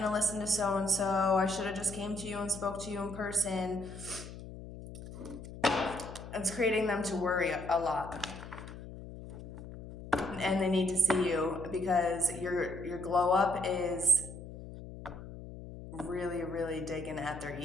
listened to so-and-so. I should have just came to you and spoke to you in person. It's creating them to worry a lot. And they need to see you because your glow up is really, really digging at their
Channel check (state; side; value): noise; left; hum, 12 dB below the sound